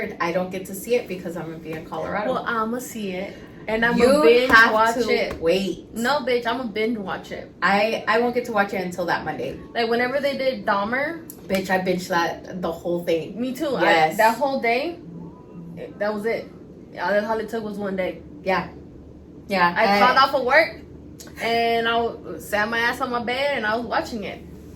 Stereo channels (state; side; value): identical; both; correlation 1.00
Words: I don't get to see it because I'm going to be in Colorado. Well, I'm going to see it. And I'm going to binge watch it. Wait. No, bitch, I'm going to binge watch it. I won't get to watch it until that Monday. Like, whenever they did Dahmer. Bitch, I binged that, the whole thing. Me too. Yes. That whole day, that was it. All it took was one day. Yeah. Yeah. I called off of work, and I sat my ass on my bed, and I was watching it.